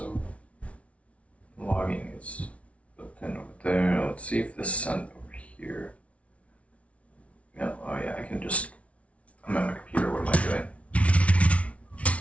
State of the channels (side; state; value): right; late; 0.064 ms